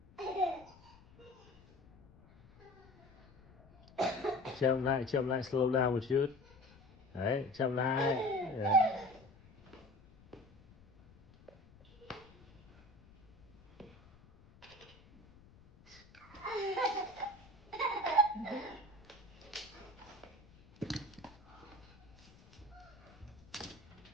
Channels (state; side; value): noise; left; rumble, 25 dB below the sound